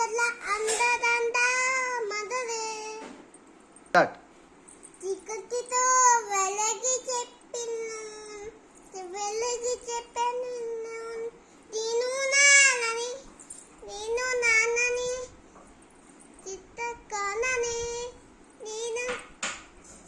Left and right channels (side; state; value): both; identical; correlation 1.00